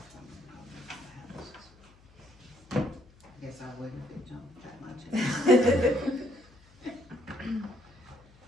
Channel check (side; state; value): left; noise; hum, 27 dB below the sound